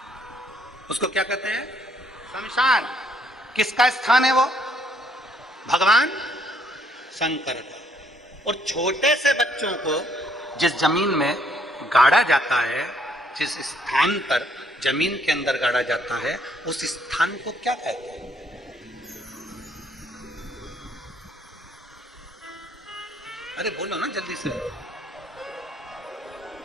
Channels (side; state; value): both; normal; correlation 0.68